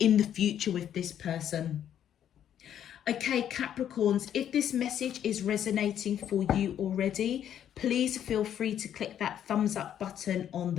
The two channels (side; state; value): right; quieter; 10.0 dB